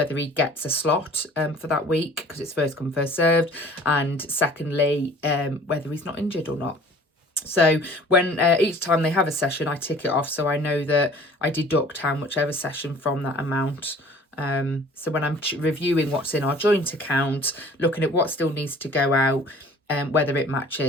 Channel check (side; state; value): both; normal; correlation 0.49